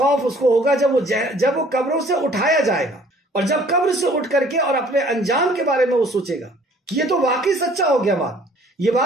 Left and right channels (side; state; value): both; normal; correlation 0.56